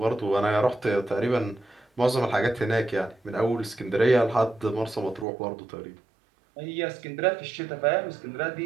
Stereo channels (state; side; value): drops out; left; at 5.2 s